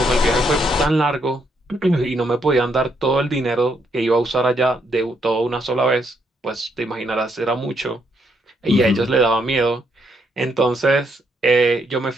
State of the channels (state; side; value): normal; both; correlation 0.75